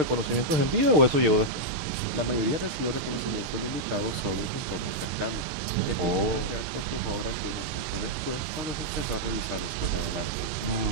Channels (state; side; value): late; left; 6.5 ms